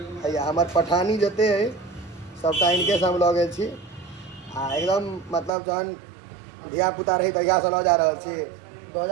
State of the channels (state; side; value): drops out; left; at 5.5 s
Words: भैया हमार पठानी जते है सबटा इनके से हम लऽ गेल छी आ एकदम मतलब जहन धिया पुता रही तहिया से लऽ जा रहल छी